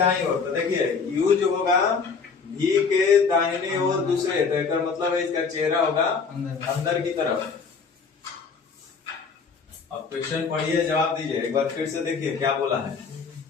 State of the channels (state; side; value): quieter; right; 5.3 dB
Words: ओर, तो देखिए यू जो होगा भी के दाहिने ओर दूसरे, तो इसका मतलब है इसका चेहरा होगा अंदर की तरफ। अब क्वेश्चन पढ़िए जवाब दीजिए, एक बार फिर से देखिए क्या बोला है।